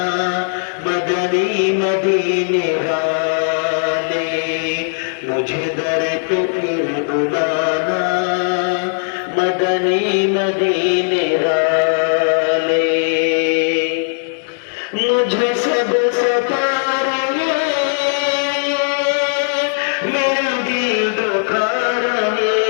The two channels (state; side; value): silent; right; digital silence